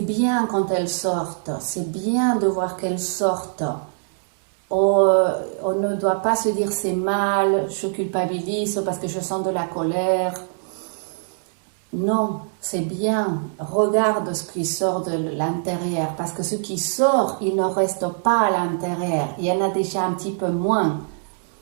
bien quand elles sortent, c'est bien de voir qu'elles sortent. On ne doit pas se dire c'est mal, je culpabilise parce que je sens de la colère. Non, c'est bien. Regarde ce qui sort de l'intérieur parce que ce qui sort, il ne reste pas à l'intérieur. Il y en a déjà un petit peu moins.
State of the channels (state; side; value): silent; left; digital silence